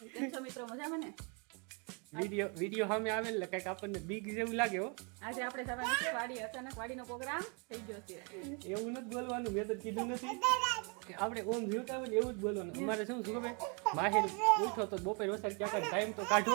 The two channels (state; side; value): quieter; left; 33.8 dB